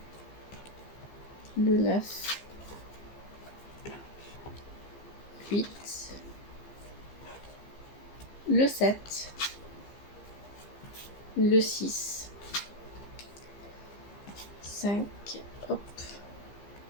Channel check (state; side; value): late; right; 15 ms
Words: le 9, 8, le 7, le 6, 5, hop,